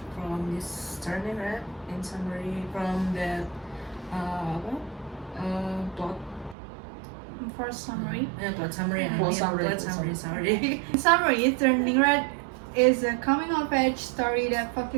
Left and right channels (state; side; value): drops out; left; at 6.6 s